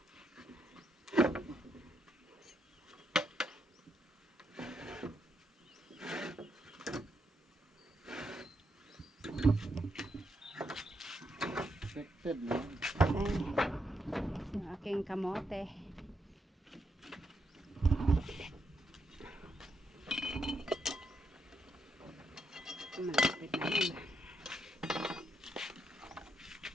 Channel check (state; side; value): normal; both; correlation 0.79